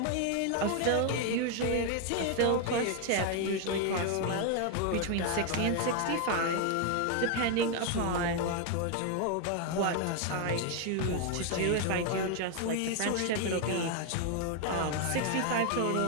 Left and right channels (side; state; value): both; different; correlation 0.01